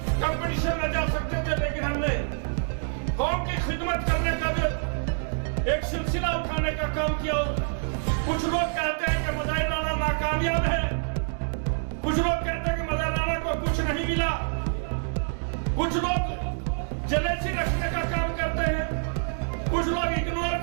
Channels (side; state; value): left; silent; digital silence